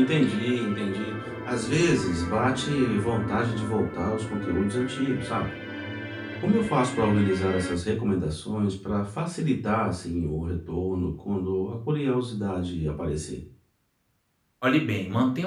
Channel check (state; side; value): identical; both; correlation 1.00